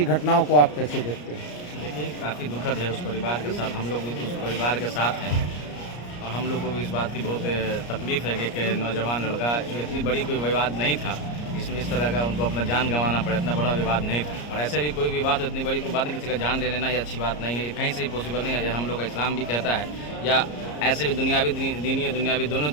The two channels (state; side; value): late; right; 34 ms